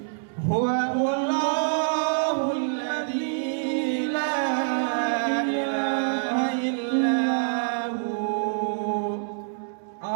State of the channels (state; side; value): silent; left; digital silence